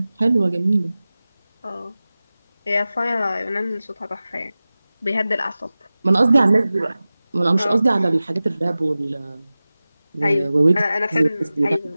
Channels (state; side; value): inverted; both; correlation -0.97